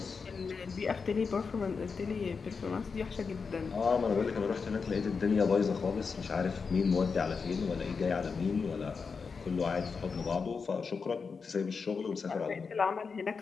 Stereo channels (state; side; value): quieter; right; 5.2 dB